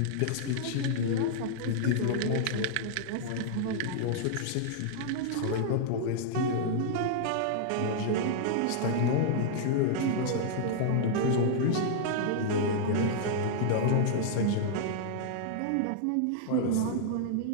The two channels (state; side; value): different; both; correlation -0.01